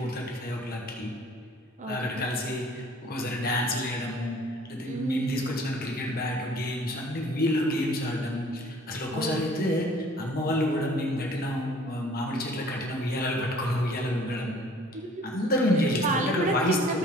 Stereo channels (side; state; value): both; normal; correlation 0.53